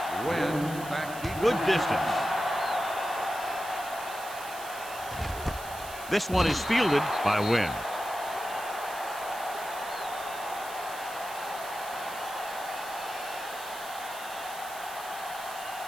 Wynn back deep. Good distance. This one is fielded by Wynn.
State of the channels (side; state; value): right; noise; hiss, 13 dB below the sound